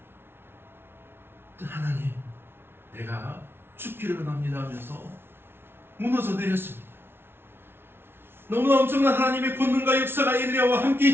하나님, 내가 죽기를 원합니다 하면서 무너져 내렸습니다. 너무나 엄청난 하나님의 권능과 역사가 엘리야와 함께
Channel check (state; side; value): late; left; 0.11 ms